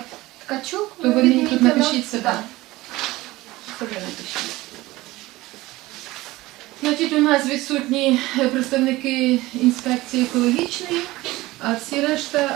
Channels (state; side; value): quieter; left; 18.9 dB